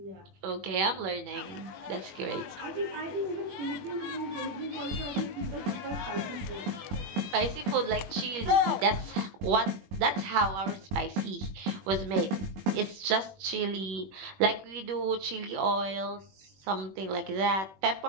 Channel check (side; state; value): left; late; 21 ms